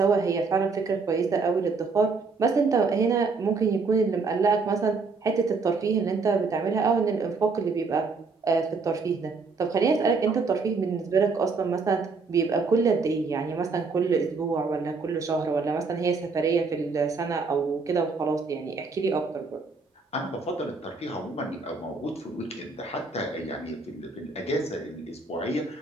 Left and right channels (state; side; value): quieter; left; 4.4 dB